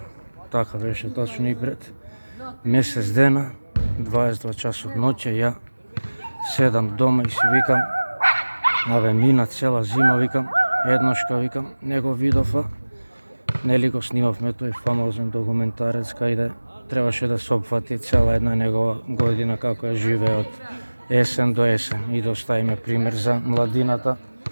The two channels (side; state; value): both; inverted; correlation -1.00